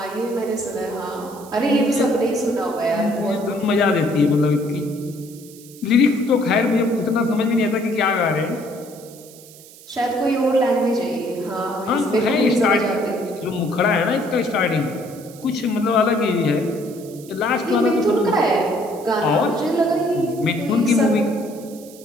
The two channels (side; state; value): right; noise; hiss, 21 dB below the sound